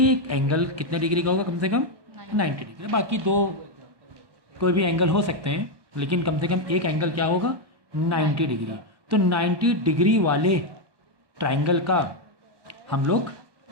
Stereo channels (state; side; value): late; left; 1.1 ms